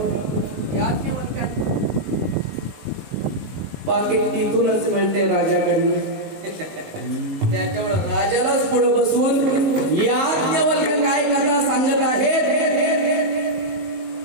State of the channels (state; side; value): late; left; 19 ms